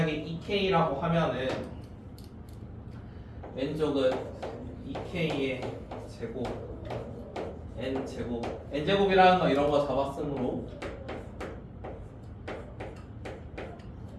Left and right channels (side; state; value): both; identical; correlation 1.00